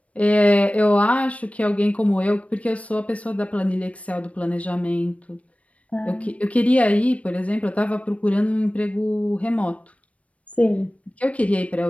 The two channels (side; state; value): right; late; 0.065 ms